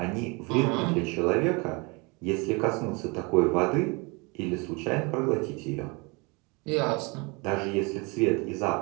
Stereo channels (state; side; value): quieter; left; 28.8 dB